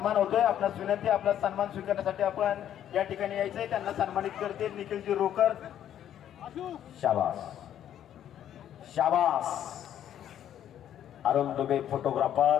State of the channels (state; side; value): quieter; right; 10.6 dB